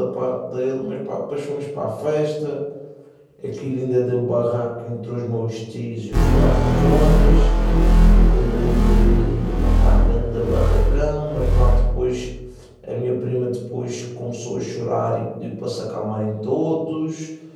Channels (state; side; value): identical; both; correlation 1.00